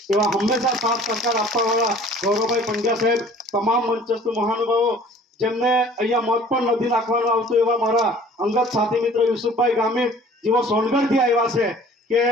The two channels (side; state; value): both; normal; correlation 0.50